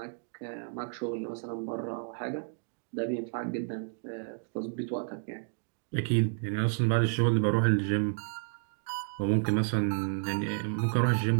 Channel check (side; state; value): left; silent; 57 dB below the other